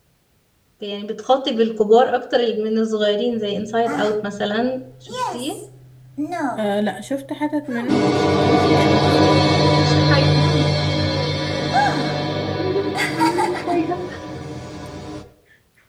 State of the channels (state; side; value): identical; both; correlation 1.00